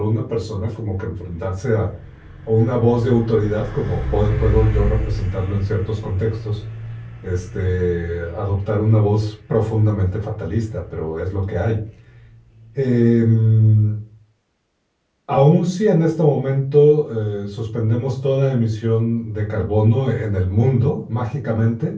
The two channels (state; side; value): identical; both; correlation 1.00